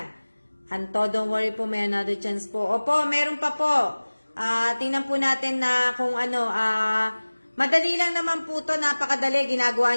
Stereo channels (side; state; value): both; inverted; correlation -1.00